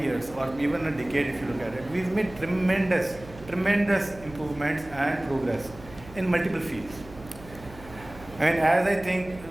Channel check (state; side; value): noise; right; hum, 18 dB below the sound